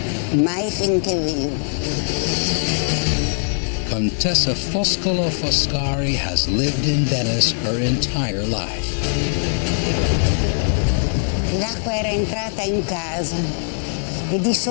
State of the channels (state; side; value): silent; right; digital silence